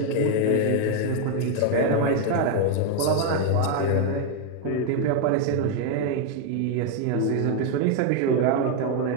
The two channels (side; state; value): both; different; correlation 0.00